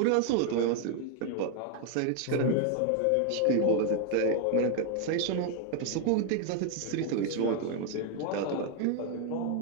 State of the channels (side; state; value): both; different; correlation 0.01